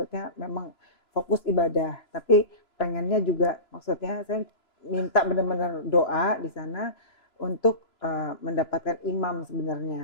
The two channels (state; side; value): late; right; 3.0 ms